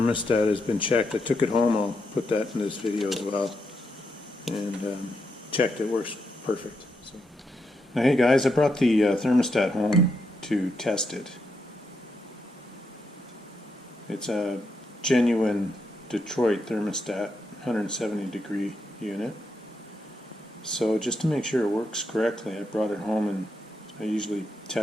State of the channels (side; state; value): both; normal; correlation 0.82